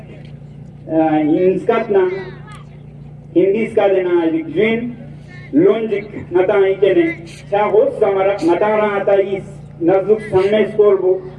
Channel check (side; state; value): both; identical; correlation 1.00